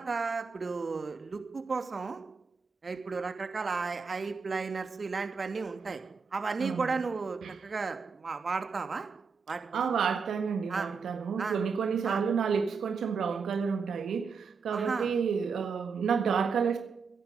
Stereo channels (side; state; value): left; quieter; 5.4 dB